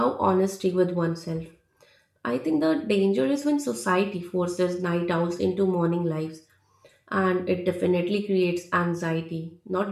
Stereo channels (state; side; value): identical; both; correlation 1.00